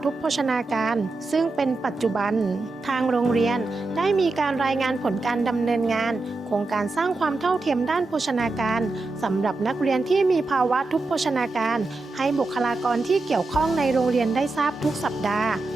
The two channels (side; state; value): left; quieter; 3.3 dB